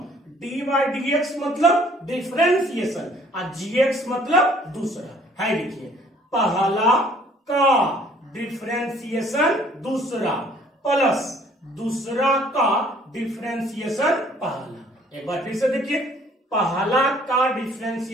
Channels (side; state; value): both; normal; correlation 0.58